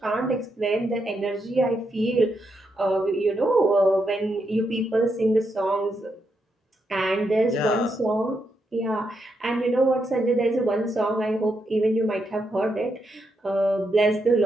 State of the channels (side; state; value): both; normal; correlation 0.82